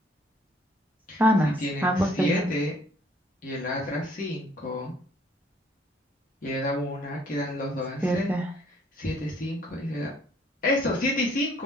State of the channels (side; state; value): both; normal; correlation 0.61